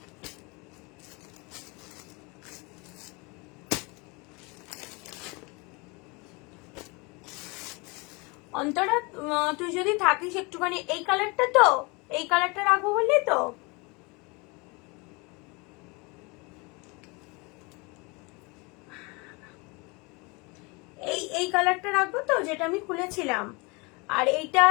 অন্তরা তুই যদি থাকিস একটুখানি, এই কালারটা তো, এই কালারটা রাখবো বললি তো, এই কালারটা রাখবো তো, যেটা আমি খুলেছিলাম। আর এইটা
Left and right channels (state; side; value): quieter; right; 28.0 dB